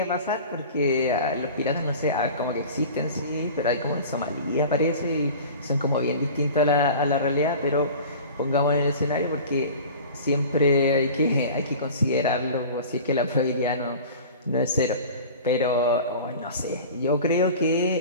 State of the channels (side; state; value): both; inverted; correlation -0.39